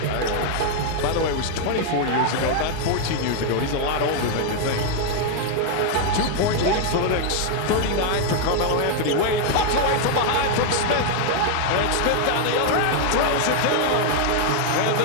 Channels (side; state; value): both; different; correlation 0.00